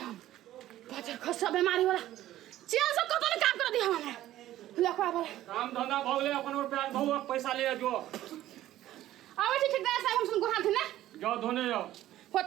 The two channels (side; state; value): left; quieter; 13.9 dB